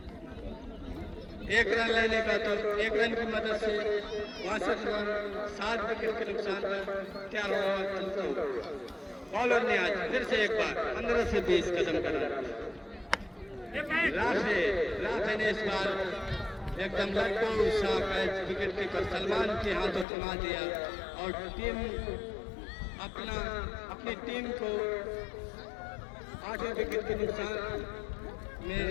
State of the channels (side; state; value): right; drops out; at 20.1 s